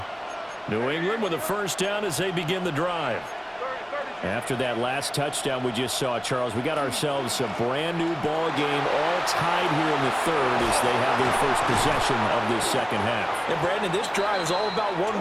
New England with a first down as they begin the drive. After that last touchdown we just saw, Charles, we got ourselves a brand new ball game, all tied here in the third as they have their first possession of this second half. And Brandon, this drive is all about one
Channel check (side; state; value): both; identical; correlation 1.00